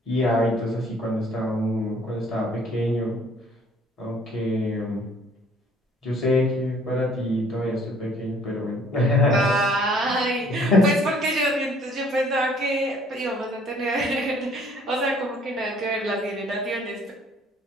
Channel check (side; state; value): both; normal; correlation 0.58